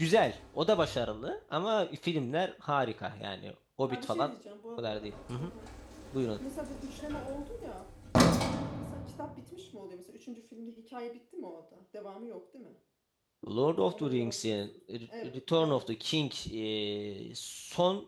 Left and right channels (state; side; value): identical; both; correlation 1.00